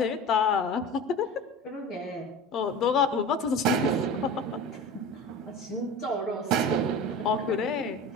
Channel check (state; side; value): normal; both; correlation 0.33